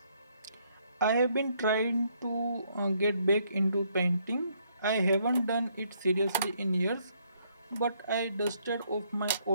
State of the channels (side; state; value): both; inverted; correlation -0.70